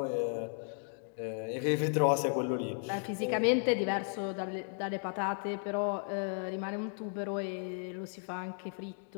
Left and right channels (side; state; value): right; silent; 55 dB below the other